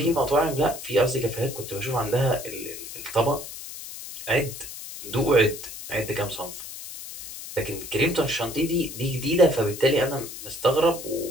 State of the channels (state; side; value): noise; left; hiss, 11 dB below the sound